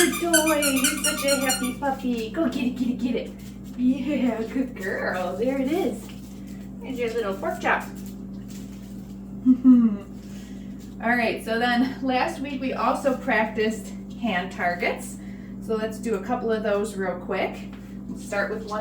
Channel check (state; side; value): identical; both; correlation 1.00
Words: toy. You're such a happy puppy. Go get it, get it, get it. Yeah, good girl. There it is. Here's your little pork chop. All right, so then last week we also practiced hand targets. So let's do a couple of those real quick. We'll start with